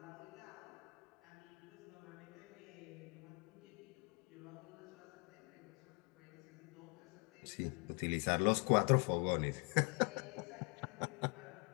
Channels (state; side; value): quieter; right; 35.0 dB